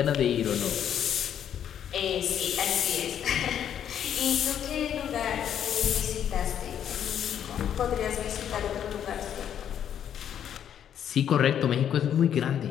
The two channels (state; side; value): quieter; right; 9.4 dB